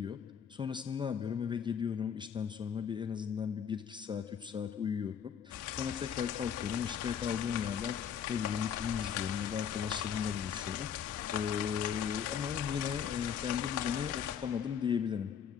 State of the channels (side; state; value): right; quieter; 8.0 dB